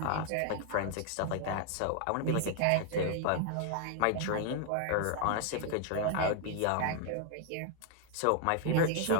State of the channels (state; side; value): different; both; correlation 0.00